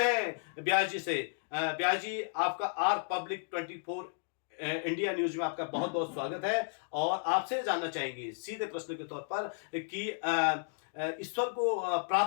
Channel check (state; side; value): silent; right; digital silence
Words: हैं व्यास जी से। व्यास जी, आपका आर पब्लिक 24 इंडिया न्यूज में आपका बहुत बहुत स्वागत है और आपसे जानना चाहेंगे सीधे प्रश्न के तौर पर कि ईश्वर को